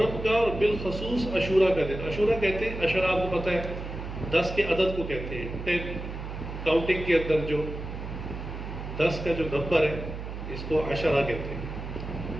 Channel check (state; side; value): noise; right; hum, 8 dB below the sound